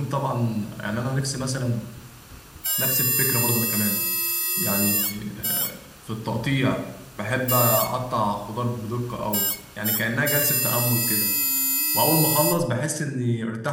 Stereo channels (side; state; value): both; identical; correlation 1.00